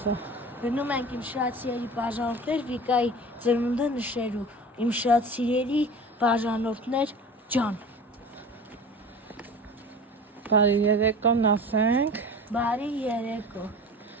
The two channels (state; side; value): normal; both; correlation 0.37